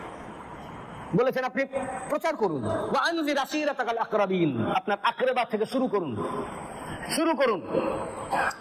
বলেছেন আপনি প্রচার করুন, ওয়া আনজির আসিরাতাকাল আকরাবিন, আপনার আকরাবা থেকে শুরু করুন,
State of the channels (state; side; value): identical; both; correlation 1.00